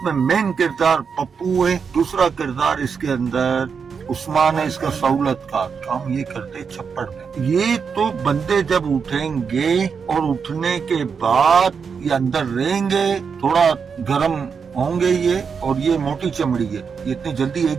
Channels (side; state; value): left; quieter; 6.0 dB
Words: मेन किरदार पप्पू है, दूसरा किरदार इसके अंदर उस्मान है, इसका सहूलत का काम ये करते छप्पड़ में। ये तो बंदे जब उठेंगे और उठने के बाद ये अंदर रहेंगे, थोड़ा गर्म होंगे ये, और ये मोटी चमड़ी है, ये इतनी जल्दी